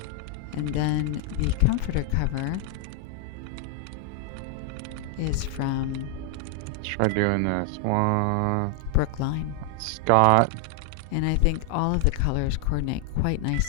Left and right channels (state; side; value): different; both; correlation 0.00